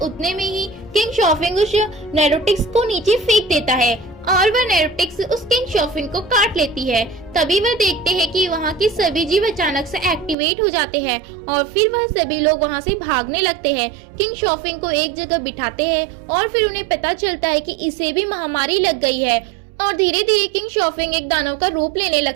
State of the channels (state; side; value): drops out; left; at 10.4 s